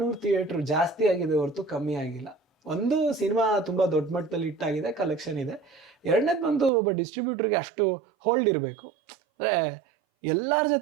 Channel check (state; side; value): drops out; left; at 6.7 s